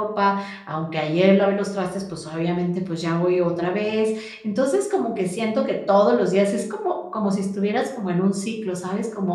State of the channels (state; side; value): identical; both; correlation 1.00